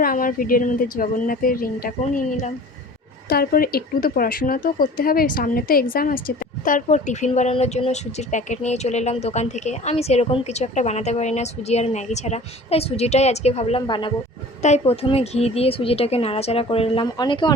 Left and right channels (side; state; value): both; normal; correlation 0.43